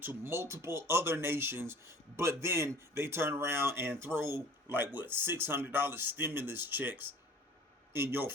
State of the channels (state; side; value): normal; both; correlation 0.47